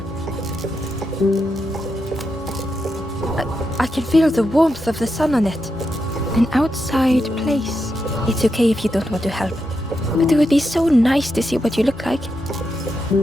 I can feel the warmth of the sun on it. An outside place. It's okay if you don't want to help. But it would be so nice to see what you look like.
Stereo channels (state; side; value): normal; both; correlation 0.85